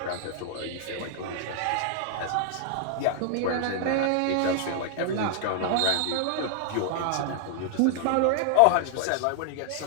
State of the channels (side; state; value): both; different; correlation 0.00